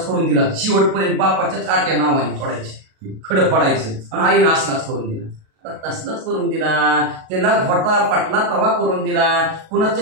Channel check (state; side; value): late; left; 37 ms